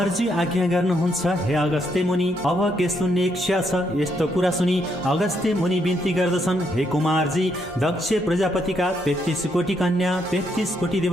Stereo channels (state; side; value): normal; both; correlation 0.76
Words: कुमारजी आज्ञा गर्नुहुन्छ हे अगस्त्य मुनि, अब के सुन्ने इच्छा छ? यस्तो कुरा सुनि अगस्त्य मुनि बिन्ती गर्दछन्, हे कुमारजी, दक्ष प्रजापतिका 33 कोटी कन्या 33 कोटी